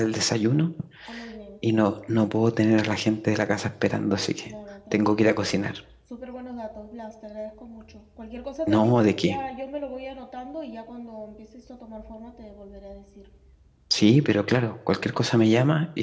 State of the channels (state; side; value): identical; both; correlation 1.00